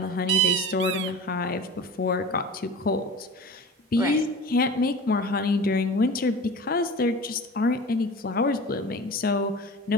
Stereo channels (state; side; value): normal; both; correlation 0.35